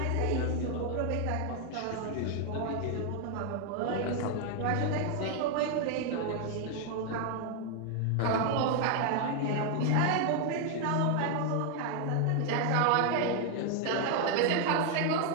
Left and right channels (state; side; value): different; both; correlation 0.00